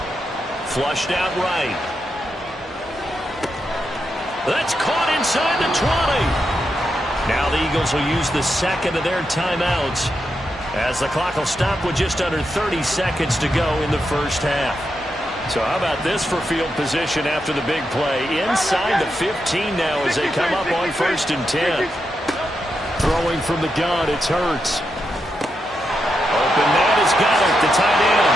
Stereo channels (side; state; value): both; normal; correlation 0.85